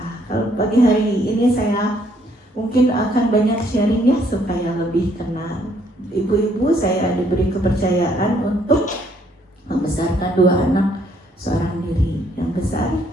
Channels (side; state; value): both; normal; correlation 0.68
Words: Kalau pagi hari ini saya mungkin akan banyak sharing ya supaya lebih kenal. Ibu-ibu, saya diberi kepercayaan untuk membesarkan 2 anak seorang diri. Yang besar